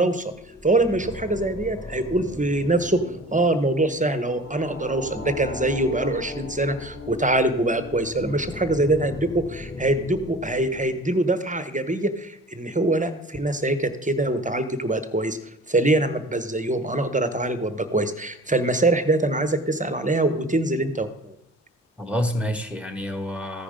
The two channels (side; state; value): both; normal; correlation 0.43